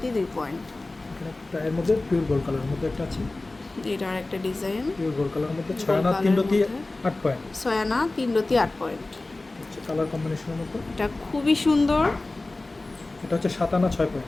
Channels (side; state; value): right; quieter; 3.1 dB